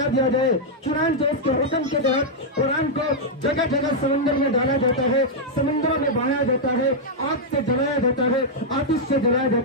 دیا جائے. چنانچہ اس کے حکم کے تحت قرآن کو جگہ جگہ سمندر میں ڈالا جاتا ہے, سمندروں میں بہایا جاتا ہے, آگ سے جلایا جاتا ہے, آتش سے جلایا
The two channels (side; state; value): both; normal; correlation -0.04